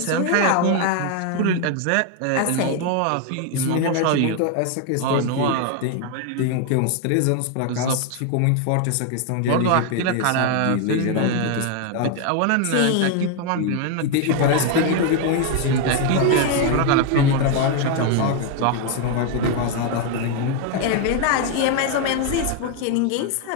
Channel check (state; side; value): different; both; correlation 0.01